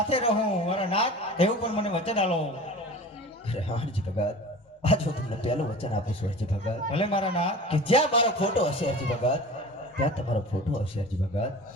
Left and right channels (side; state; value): both; normal; correlation 0.38